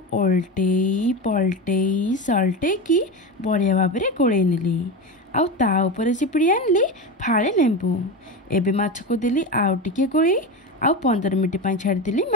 ओल्टेई पलटेई सल्टेकी बढ़िया भाव में गोलई नेली आउ ता ऊपर चिपिड़ी आनली फाळे लेंबू एबे माछ को देली आउ टिके गोलई आउ 15 मिनिट पाई छाड़देली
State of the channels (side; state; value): both; normal; correlation 0.21